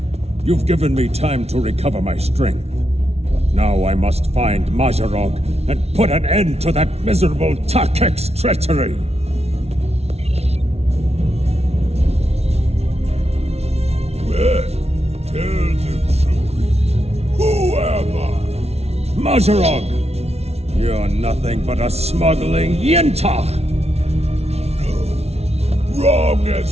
You've given me time to recover my strength. But now I must find Majorog and put an end to that miserable Takek's treachery! Well, tell the truth. Who am I? Majorog! You're nothing but a smuggling Yinta! No. Wrong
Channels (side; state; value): left; late; 0.31 ms